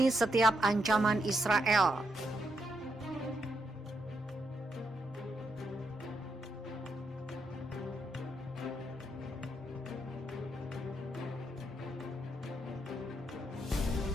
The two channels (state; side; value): normal; both; correlation 0.80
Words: setiap ancaman Israel.